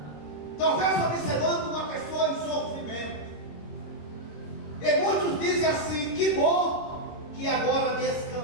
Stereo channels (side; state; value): right; late; 26 ms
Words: talvez observando uma pessoa em sofrimento, e muitos dizem assim: que bom que agora